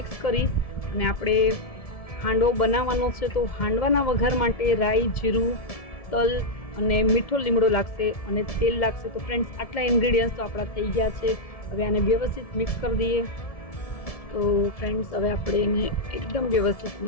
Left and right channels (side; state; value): right; late; 1.7 ms